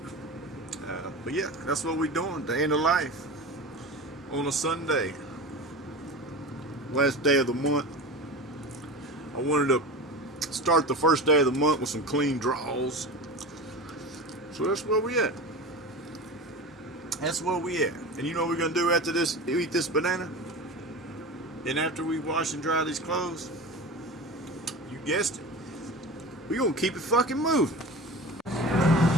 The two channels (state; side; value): normal; both; correlation 0.31